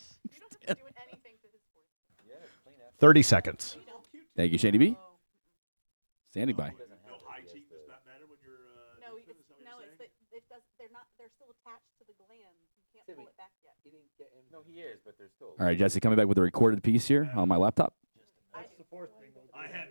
Doing anything to his voice. 30 seconds. Thank you, Shady B. Standing by. No, it's the, it does. They're not. They're still attached to the glands. You can't pull it back yet. no, he is, but there's still. All right, Jesse, coming back with a recorded piece here on my laptop.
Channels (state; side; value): inverted; both; correlation -1.00